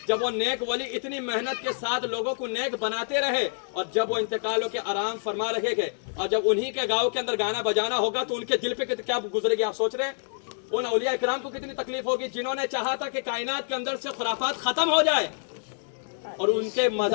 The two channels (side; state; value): right; silent; digital silence